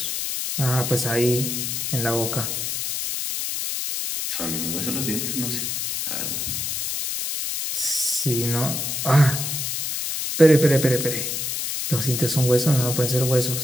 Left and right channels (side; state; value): left; noise; hiss, 2 dB below the sound